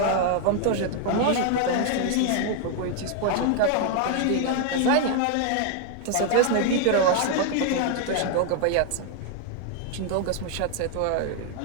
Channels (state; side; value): different; both; correlation 0.00